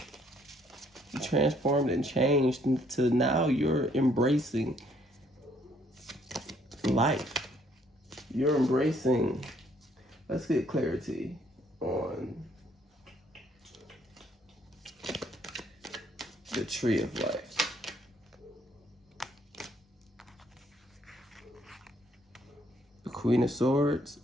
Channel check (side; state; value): both; normal; correlation 0.66